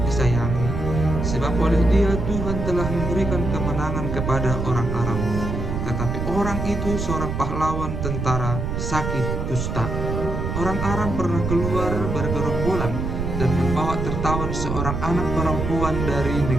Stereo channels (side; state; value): right; noise; rumble, 3 dB below the sound